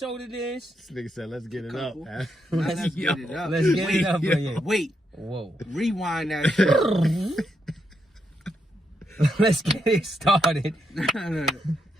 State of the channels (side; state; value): both; normal; correlation 0.81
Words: it is. This nigga said, let's get it up. Let's get it up. Let's get it up. Yeah. Wait. Whoa. Rewind that shit. Let's get it started.